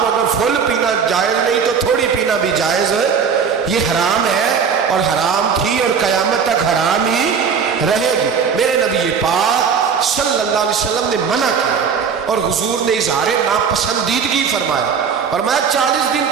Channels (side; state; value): left; quieter; 6.4 dB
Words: اگر فل پینا جائز نہیں تو تھوڑی پینا بھی جائز ہے. یہ حرام ہے اور حرام تھی اور قیامت تک حرام ہی رہے گی. میرے نبی پاک صلی اللہ علیہ وسلم نے منع کیا اور حضور نے اظہار ناپسندیدگی فرمایا. فرمایا 40 دن